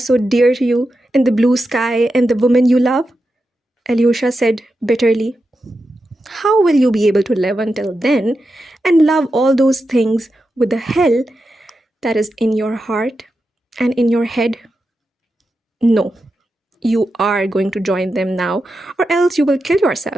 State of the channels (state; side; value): normal; both; correlation 0.89